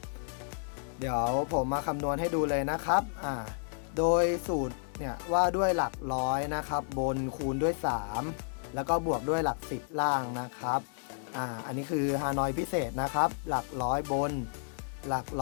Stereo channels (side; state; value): right; silent; 57 dB below the other